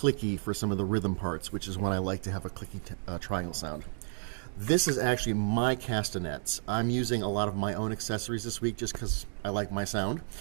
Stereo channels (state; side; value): silent; left; digital silence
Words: for some of the rhythm parts, which is when I like to have a clicky triangle sound. This is actually my castanets. I'm using a lot of my own accessories this week just because I like my sound.